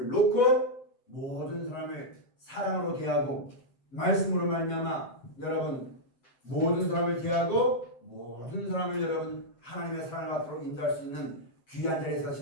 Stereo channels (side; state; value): right; late; 7.7 ms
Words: 놓고 모든 사람을 사랑으로 대하고 말씀으로 말미암아 여러분 모든 사람을 대하고 모든 사람을 여러분 하나님의 사랑을 앞으로 인도할 수 있는 귀한 자리에